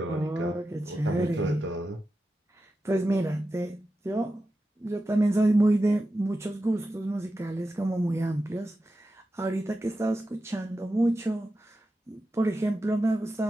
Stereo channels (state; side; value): normal; both; correlation 0.91